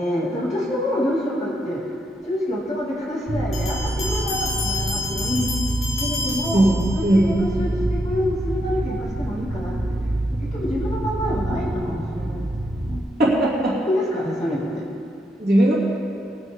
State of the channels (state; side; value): normal; both; correlation 0.80